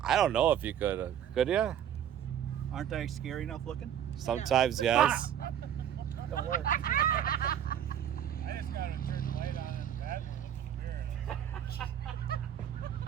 I don't know if you could. Could you? Aren't I scary enough looking? Sometimes, yes. Don't work. I just gotta turn the light on and that looks weird.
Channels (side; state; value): left; quieter; 9.8 dB